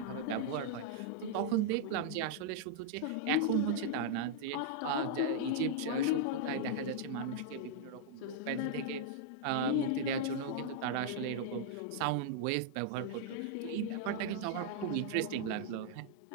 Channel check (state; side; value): different; both; correlation -0.01